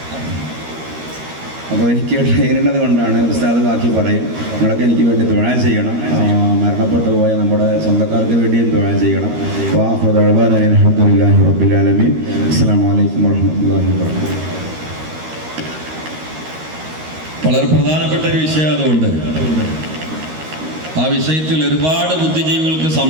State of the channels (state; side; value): late; left; 13 ms